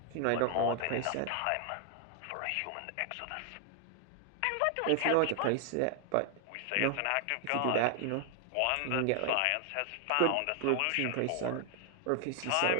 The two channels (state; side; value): different; both; correlation 0.00